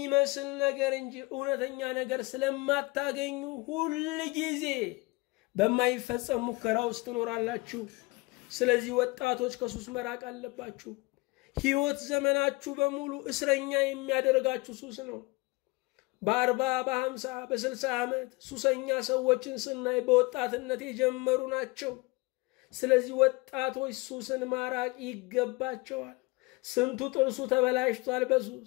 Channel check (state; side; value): quieter; right; 24.7 dB